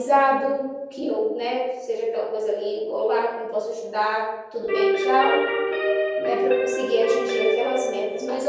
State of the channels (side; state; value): both; identical; correlation 1.00